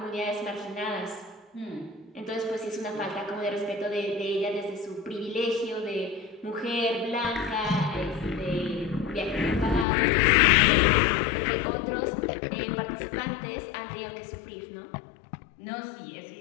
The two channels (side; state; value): right; drops out; at 9.9 s